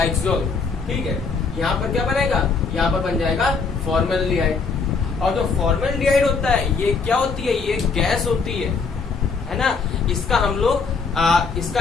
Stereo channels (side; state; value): right; quieter; 4.8 dB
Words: ठीक है, यहाँ पर क्या बनेगा, यहाँ पर बन जाएगा फॉर्मेल्डिहाइड। और जो फॉर्मेल्डिहाइड होता है, ये क्या होती है, ये गैस होती है ना। इसका हम लोग इसका